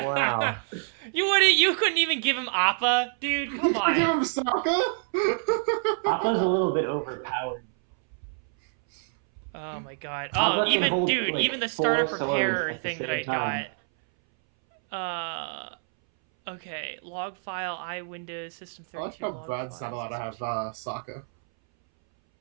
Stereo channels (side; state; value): left; silent; 60 dB below the other